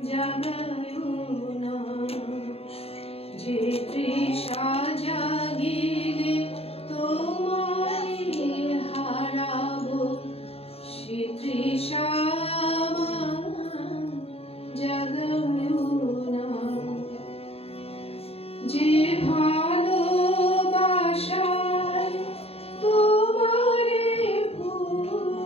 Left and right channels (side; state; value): right; late; 0.29 ms